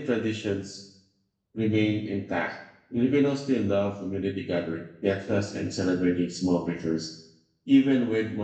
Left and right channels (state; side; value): identical; both; correlation 1.00